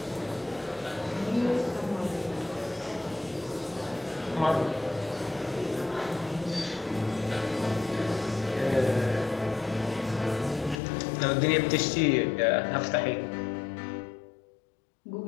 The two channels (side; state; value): right; drops out; at 10.8 s